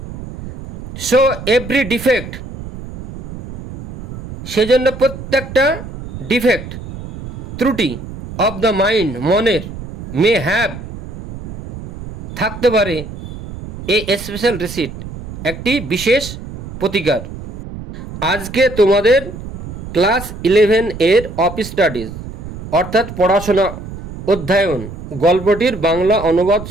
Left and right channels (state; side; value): noise; right; rumble, 12 dB below the sound